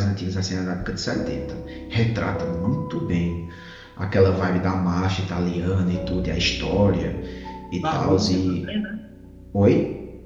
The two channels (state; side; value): identical; both; correlation 1.00